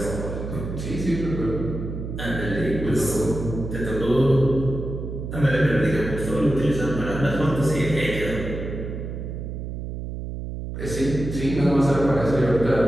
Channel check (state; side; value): noise; right; hum, 6 dB below the sound